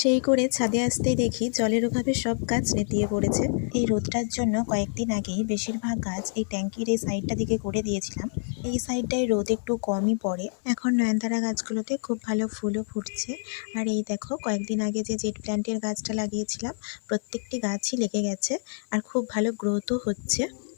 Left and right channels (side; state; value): right; silent; 60 dB below the other